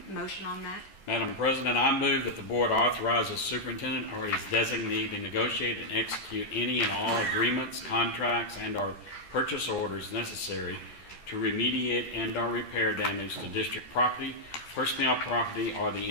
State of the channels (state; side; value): late; right; 12 ms